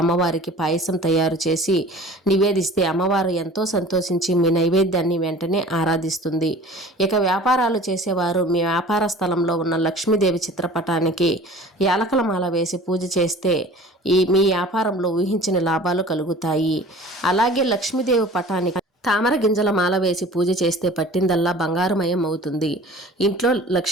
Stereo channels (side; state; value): both; normal; correlation 0.44